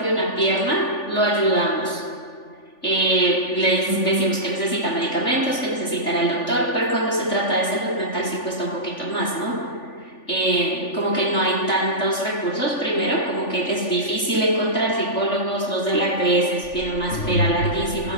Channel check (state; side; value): late; right; 3.4 ms